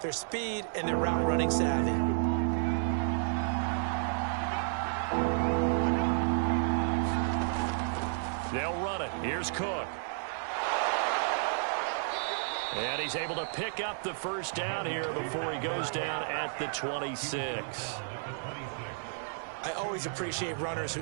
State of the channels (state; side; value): silent; left; 57 dB below the other